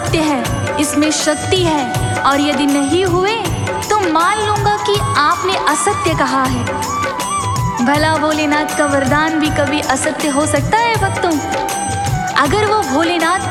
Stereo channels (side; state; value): both; identical; correlation 1.00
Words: है, इसमें शक्ति है, और यदि नहीं हुए तो मान लूंगा कि आपने असत्य कहा है। भला भोलेनाथ का वरदान भी कभी असत्य हो सकता है भक्तों? अगर वो भोलेनाथ